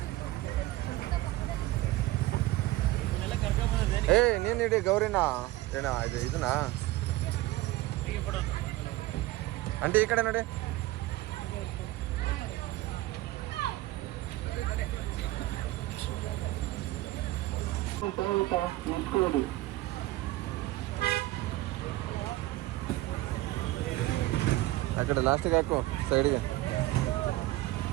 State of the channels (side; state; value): left; quieter; 17.8 dB